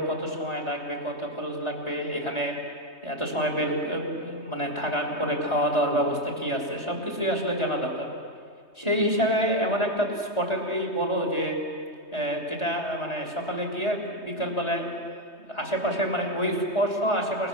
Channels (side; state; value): right; late; 3.2 ms